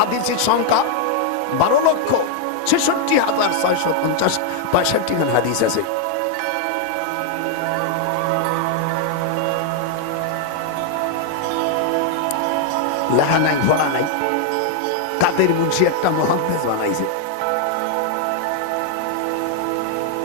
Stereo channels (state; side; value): different; both; correlation 0.00